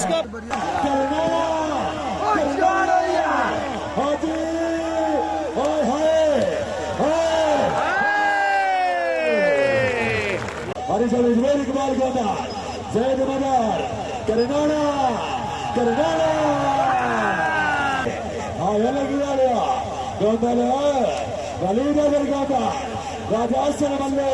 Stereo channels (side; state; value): both; identical; correlation 1.00